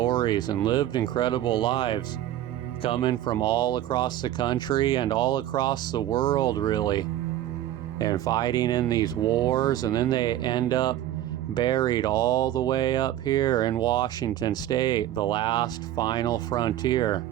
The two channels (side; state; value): left; quieter; 12.9 dB